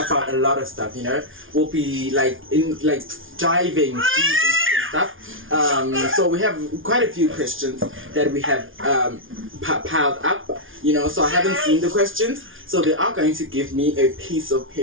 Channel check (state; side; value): late; left; 0.58 ms